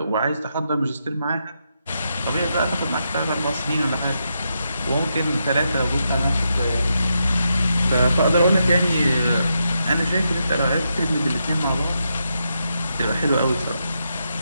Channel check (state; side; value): inverted; both; correlation -0.83